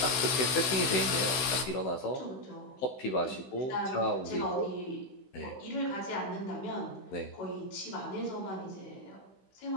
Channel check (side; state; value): right; late; 16 ms